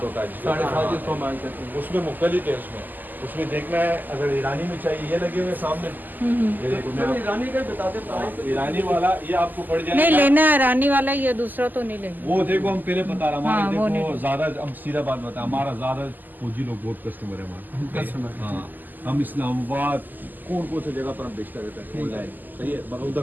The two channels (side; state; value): left; late; 0.086 ms